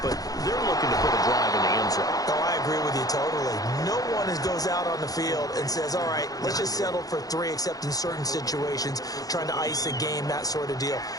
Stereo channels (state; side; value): late; right; 0.18 ms